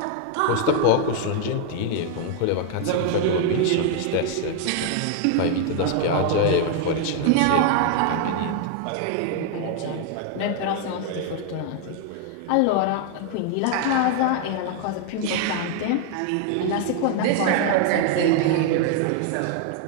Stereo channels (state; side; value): different; both; correlation 0.00